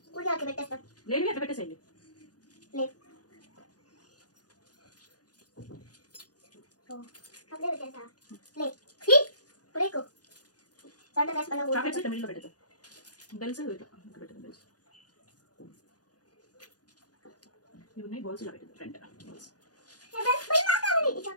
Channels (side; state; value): right; late; 0.69 ms